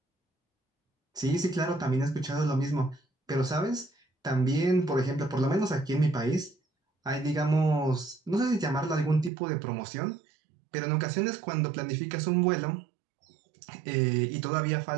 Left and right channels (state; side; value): drops out; left; at 9.3 s